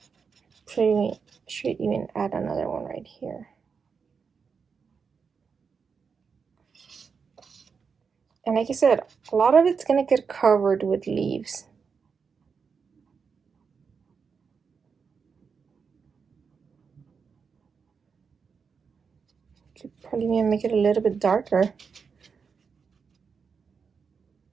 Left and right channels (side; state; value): left; quieter; 5.8 dB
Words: Should even add another one right here. And like I said, a lot of it's gonna get covered with leaves. Could probably even make it a little bit darker.